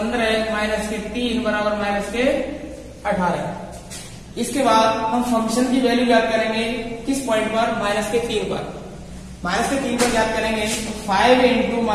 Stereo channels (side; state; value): both; identical; correlation 1.00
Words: -3 बराबर -18। इसके बाद हम फंक्शन की वैल्यू ज्ञात करेंगे किस पॉइंट पर, -3 पर। -3 पर ज्ञात करेंगे, तो 5 इंटू